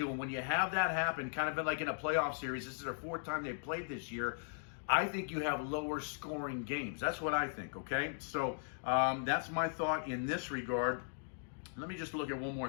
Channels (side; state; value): right; silent; digital silence